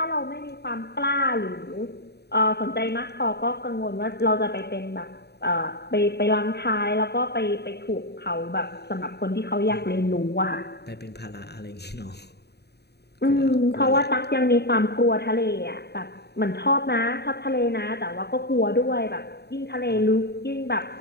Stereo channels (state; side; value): late; right; 0.48 ms